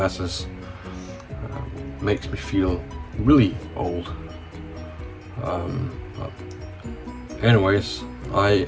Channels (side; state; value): both; identical; correlation 1.00